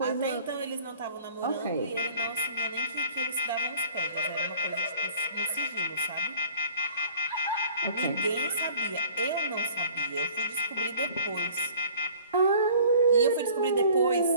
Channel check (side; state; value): both; inverted; correlation -0.51